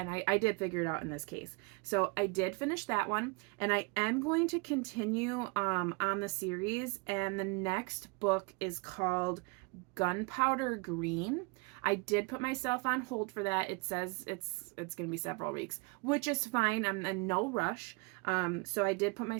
I did figure it out in this case. So I did finish that one, and I am going to continue on the series, and the next book is called Gunpowder Green. I did put myself on hold for that. It says it's going to be several weeks, which is fine. I'm in no rush. So I did put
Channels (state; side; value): quieter; left; 30.6 dB